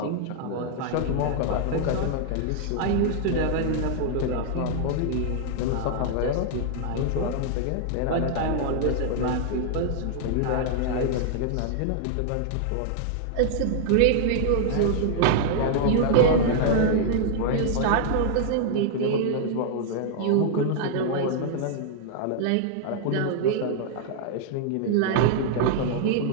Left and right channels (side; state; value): both; different; correlation -0.01